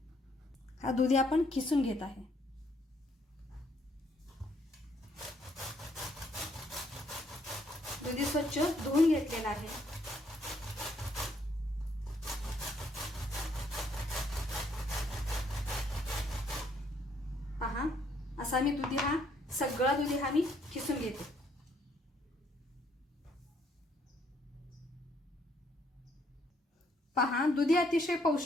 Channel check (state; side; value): normal; both; correlation 0.69